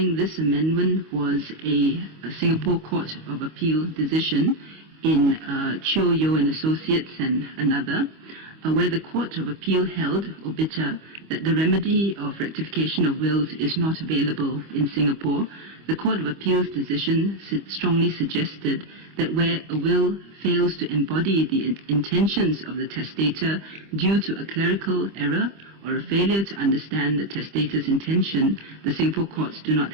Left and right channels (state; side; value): late; left; 25 ms